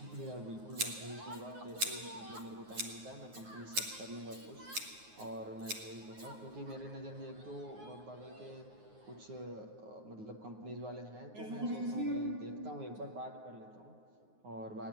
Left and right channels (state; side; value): late; left; 9.5 ms